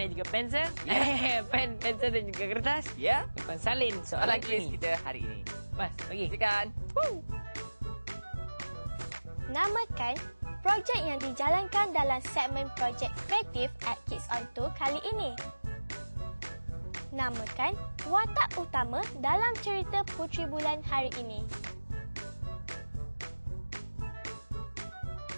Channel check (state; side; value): inverted; both; correlation -1.00